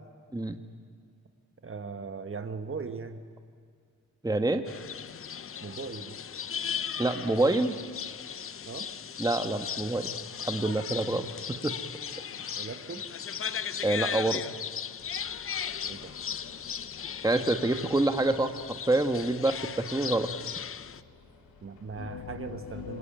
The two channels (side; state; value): both; normal; correlation 0.64